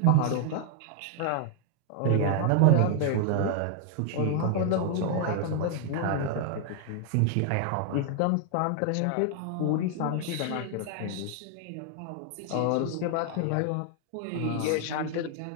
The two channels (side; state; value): both; different; correlation 0.00